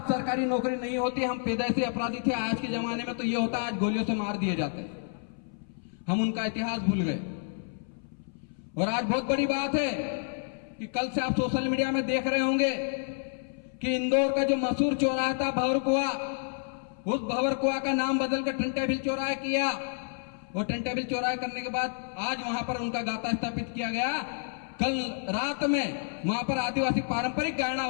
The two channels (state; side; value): silent; right; 58 dB below the other